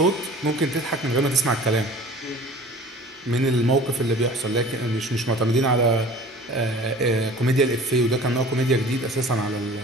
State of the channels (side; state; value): both; normal; correlation 0.45